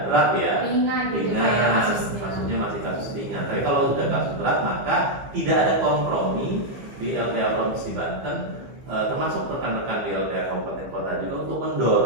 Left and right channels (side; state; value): left; late; 15 ms